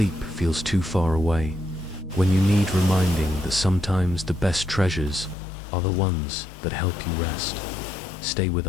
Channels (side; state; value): right; drops out; at 5.4 s